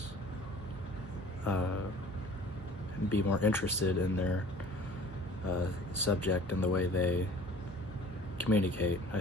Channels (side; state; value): both; normal; correlation 0.47